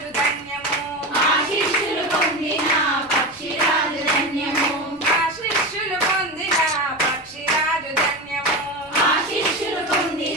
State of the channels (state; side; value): noise; left; rumble, 27 dB below the sound